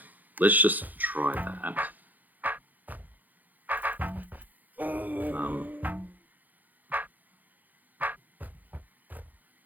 Let's just try that.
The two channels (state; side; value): late; left; 0.083 ms